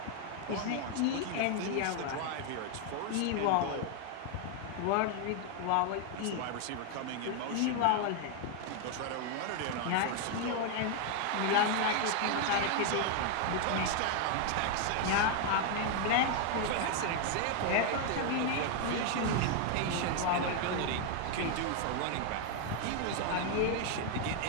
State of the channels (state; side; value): different; both; correlation 0.00